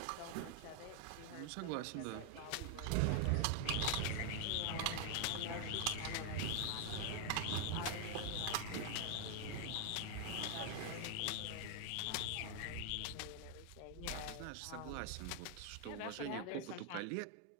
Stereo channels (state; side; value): different; both; correlation 0.00